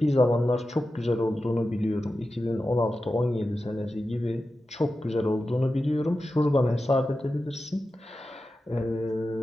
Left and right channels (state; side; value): normal; both; correlation 0.92